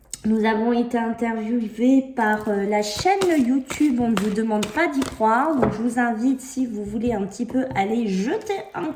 nous avons été interviewés par la chaîne YouTube. On ne vous demande pas d'y croire. Donc, je vous invite, si vous voulez un petit peu, aller jeter un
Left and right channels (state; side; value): identical; both; correlation 1.00